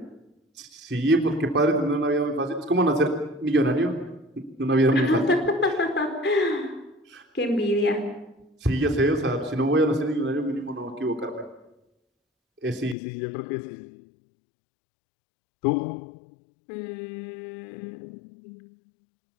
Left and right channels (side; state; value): right; drops out; at 13.0 s